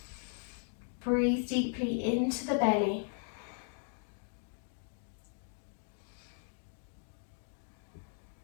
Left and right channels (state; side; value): silent; right; 53 dB below the other